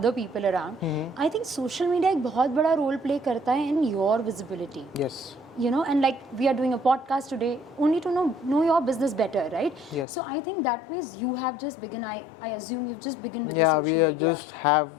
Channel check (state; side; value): drops out; right; at 10.1 s